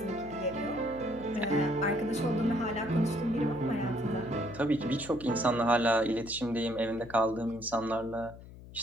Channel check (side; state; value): left; noise; hum, 17 dB below the sound